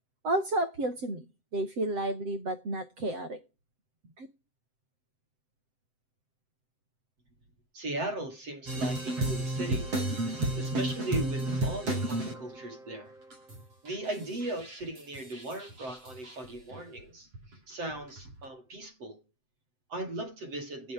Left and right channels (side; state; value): left; late; 7.8 ms